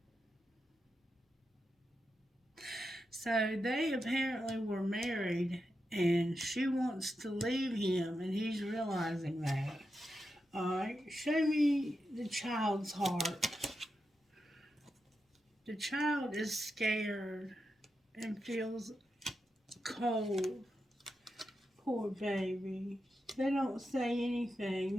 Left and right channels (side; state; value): both; normal; correlation 0.88